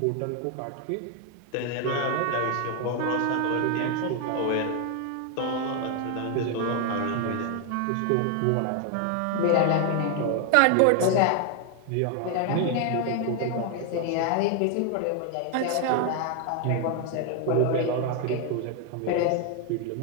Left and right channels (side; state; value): both; different; correlation 0.01